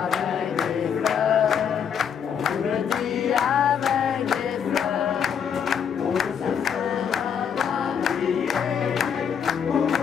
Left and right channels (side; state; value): right; quieter; 7.7 dB